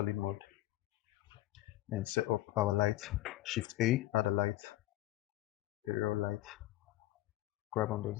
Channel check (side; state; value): right; quieter; 16.4 dB